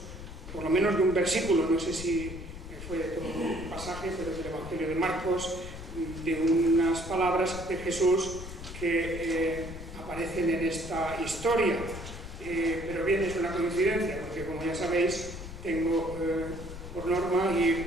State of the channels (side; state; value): left; noise; rumble, 11 dB below the sound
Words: por lo menos de un versículo, no sé si fue de todo un pasaje, pero del Evangelio de Marcos, de unas palabras de Jesús que aparecen en esta historia. Pero bien, es una coincidencia, porque como ya sabéis, tengo por norma ir